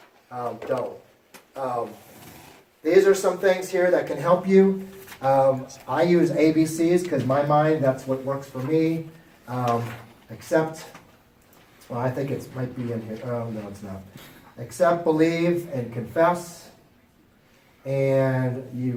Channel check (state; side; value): identical; both; correlation 1.00